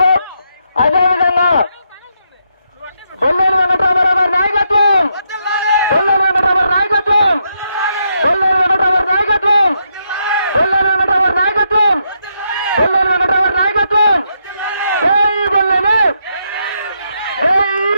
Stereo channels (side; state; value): both; inverted; correlation -0.79